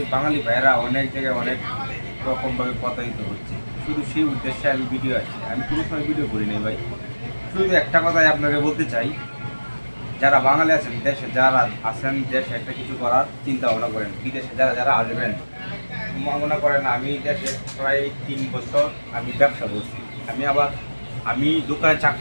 বাঙালি ভাইয়েরা অনেক জায়গায় অনেক রকমভাবে প্রতারিত হচ্ছে। শুধু সেই উদ্দেশ্যে আমি ভিডিও আসি, আমি কোনো সময় ভিডিও করি নাই ভাই। শুধু একটা কথাই আপনাকে বলতে চাই, যারা বাঙালি আছেন, দেশে যারা আছেন, দেশে একটা কিছু করার চিন্তা ভাবনা করেন। বিদেশে যারা যারা আসবেন, মনে করেন আমি দেশে প্রায় 3 বছর আমি ব্যবসা করছি। আমি দোকানে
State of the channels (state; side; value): inverted; both; correlation -1.00